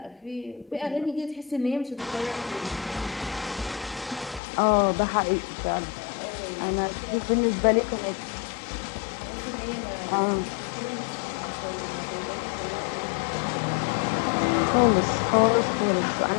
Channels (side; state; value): right; drops out; at 4.4 s